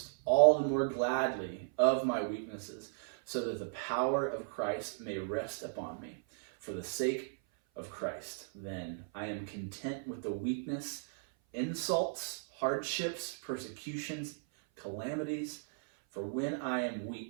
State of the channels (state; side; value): silent; left; 54 dB below the other